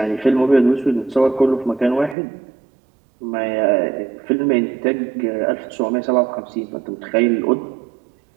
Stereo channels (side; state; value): left; drops out; at 2.1 s